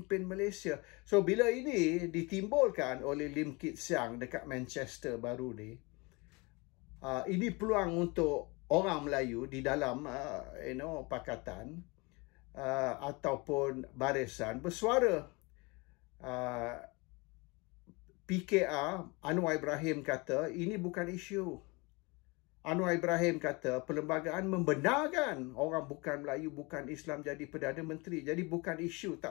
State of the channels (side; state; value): right; quieter; 27.0 dB